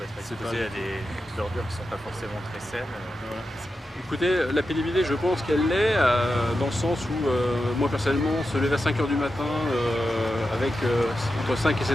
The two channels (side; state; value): both; normal; correlation 0.90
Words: être exposé à des ordures qui ne sont pas forcément très saines. Écoutez, la pénibilité, je pense qu'elle l'est, dans le sens où, moi personnellement, se lever à 5 h du matin avec entre 5 et